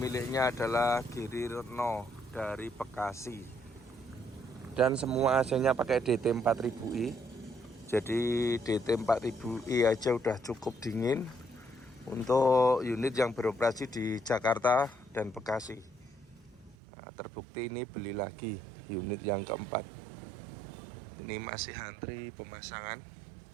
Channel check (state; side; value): drops out; left; at 16.8 s